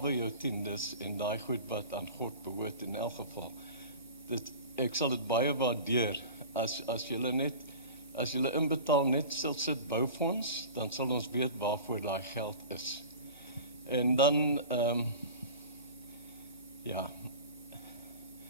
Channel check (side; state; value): both; inverted; correlation -0.37